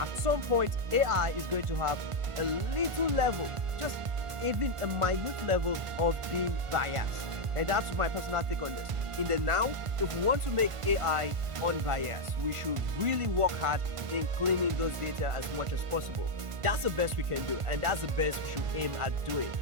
some point, AI is going to have a little level, just even a minute level of being biased. And that's my personal take on this. In the now, if we want to make AI unbiased, we should really work hard in cleaning those data as much as possible. That's the best we can do, and that's the best we should aim at doing.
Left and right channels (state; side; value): late; left; 1.5 ms